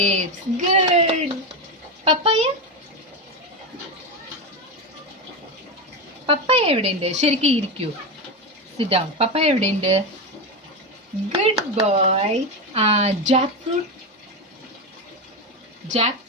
good. Papaya papaya എവിടെയുണ്ട്? ശരിക്കും ഇരിക്കൂ. Sit down. പപ്പായ എവിടെയുണ്ട്? Good boy. Jackfruit ജാക്ക്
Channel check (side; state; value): both; normal; correlation 0.14